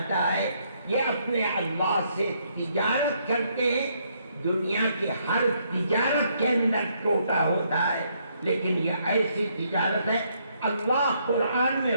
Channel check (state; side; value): inverted; both; correlation -0.72